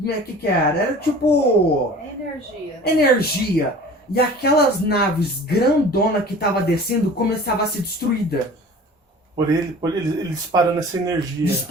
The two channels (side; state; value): both; normal; correlation 0.43